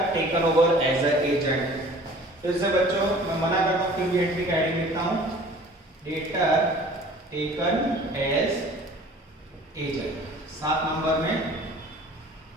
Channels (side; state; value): both; normal; correlation 0.48